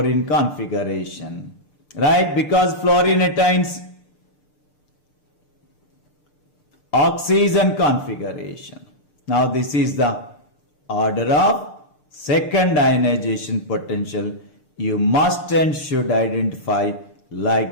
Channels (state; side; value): late; right; 6.7 ms